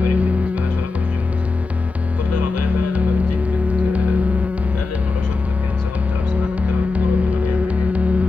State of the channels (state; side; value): quieter; right; 3.7 dB